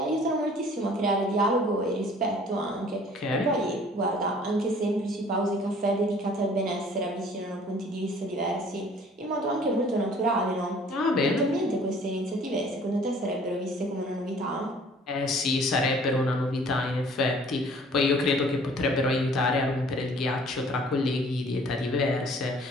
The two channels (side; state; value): both; normal; correlation 0.53